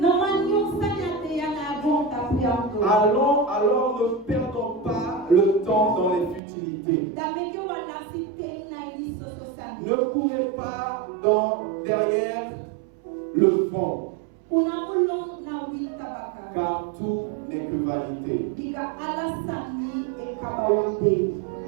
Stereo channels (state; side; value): drops out; left; at 6.4 s